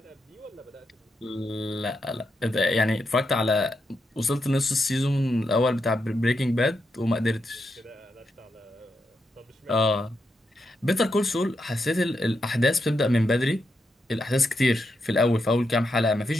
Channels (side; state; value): both; normal; correlation 0.84